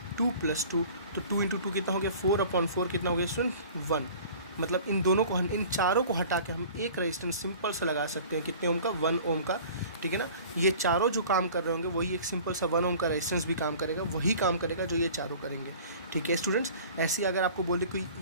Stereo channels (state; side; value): inverted; both; correlation -0.45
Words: 2 + 2। तो 2 × 2 कितना हो गया, 4/4 कितना हो गया स्टूडेंट, 1। मतलब इन दोनों को, इन चारों को हटा के हम एक रेजिस्टेंस सिंपल सा लगा सकते हैं, कितने ओम का, 1 ओम का। ठीक है ना, ये चारों जो काम कर रहे होंगे वही एक सिंपल सा 1 ओम का रेजिस्टेंस भी काम करेगा, वही काम करेगा जो ये चारों करेंगे। ठीक है स्टूडेंट्स, ऐसे अगर आपको बोल दे कोई